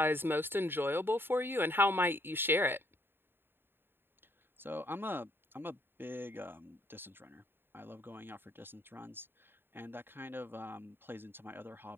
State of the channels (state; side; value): late; left; 0.10 ms